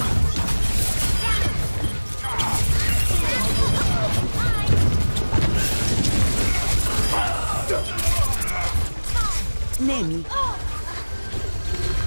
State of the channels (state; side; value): inverted; both; correlation -1.00